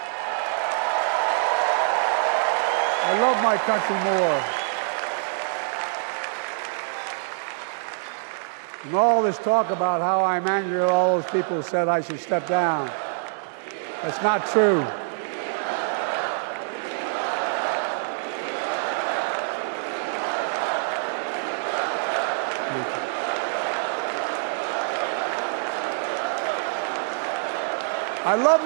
I love my country more. And all this talk about how I'm angry at all those people who said I should step down, that's not true. I love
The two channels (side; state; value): left; silent; digital silence